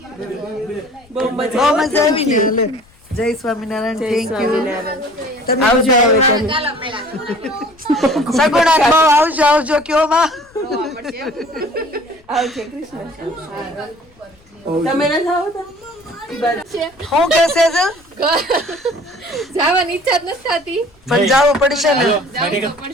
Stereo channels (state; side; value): noise; left; rumble, 29 dB below the sound